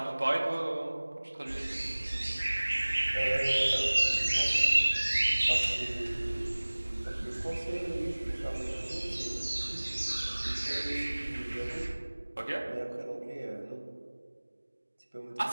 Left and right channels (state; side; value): inverted; both; correlation -1.00